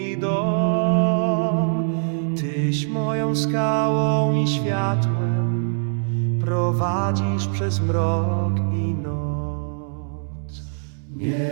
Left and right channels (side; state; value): left; silent; 64 dB below the other